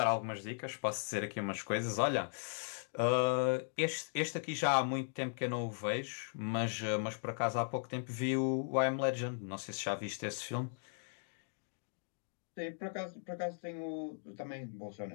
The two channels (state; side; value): silent; right; digital silence